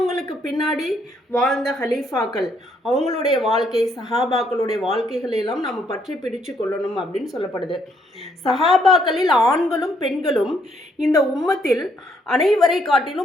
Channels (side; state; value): both; normal; correlation 0.71